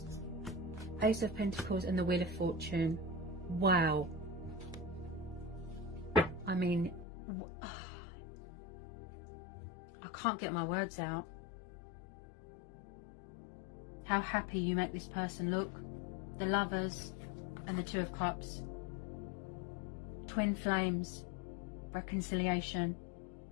Ace of Pentacles, and the Wheel of Fortune. Wow. I mean, I can't get my words out. How happy you make this person look. The Lovers and the Two of Cups. Twin flames. Reconciliation.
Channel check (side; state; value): right; drops out; at 7.1 s